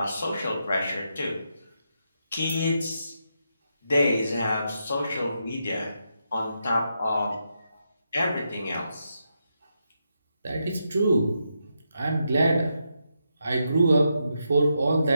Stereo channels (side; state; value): both; inverted; correlation -0.83